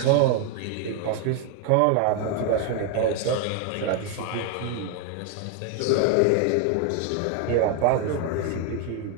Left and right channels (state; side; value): different; both; correlation 0.01